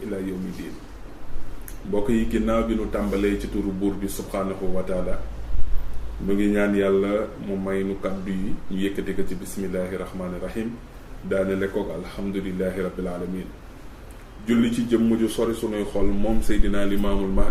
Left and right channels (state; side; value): identical; both; correlation 1.00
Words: ila yawmi din. mbokk yi ginnaaw bi nu tàmbalee ci turu buur bi subhanahu wa taala mu ngi ñaan yàlla mu may nu kaddu yi ñu yëkkati ko ci bismillahi rahmani rahim daanele koog alhamdulillahi rabbil alamin. julli ci jëmm ju sori sunuy xol moom seydina limaamul